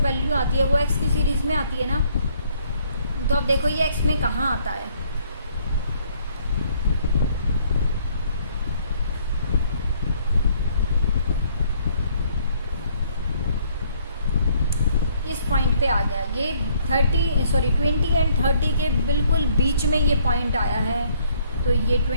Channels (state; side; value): inverted; both; correlation -0.64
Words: आती है वो एक्स की सीरीज़ में आती है ना। तो अब देखो ये एक्स में कहाँ आता है? इस पॉइंट पे आ गया। ये 20 एंड 30 के बिल्कुल बीच में ये पॉइंट आया है, तो ये